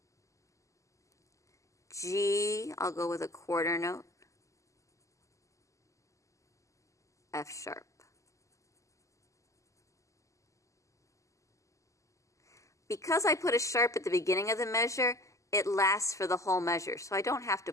G, I'll go with a quarter note. F sharp. Because I put a sharp at the beginning of the measure, it lasts for the whole measure, so I don't have to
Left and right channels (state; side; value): late; right; 0.16 ms